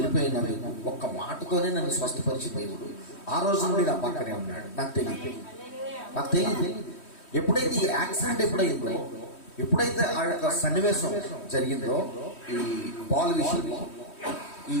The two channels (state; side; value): late; right; 3.1 ms